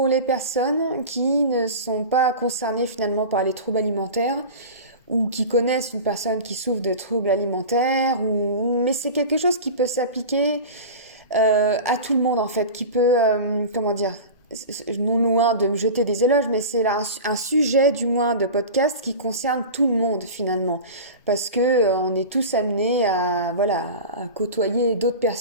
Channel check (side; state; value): both; inverted; correlation -0.31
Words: les personnes qui ne sont pas concernées finalement par les troubles alimentaires ou qui connaissent une personne qui souffre de troubles alimentaires mais c'est quelque chose qui peut s'appliquer à tout le monde en fait, qui peut comment dire, non loin de me jeter des éloges, mais c'est là un sujet du moins de podcast qui concerne tout le monde finalement, parce que on est tous amenés à voilà à côtoyer d'autres